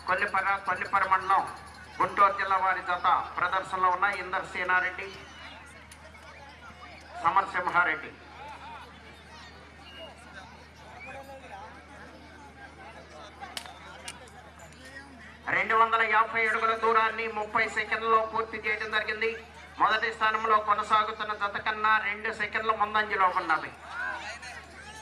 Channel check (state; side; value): identical; both; correlation 1.00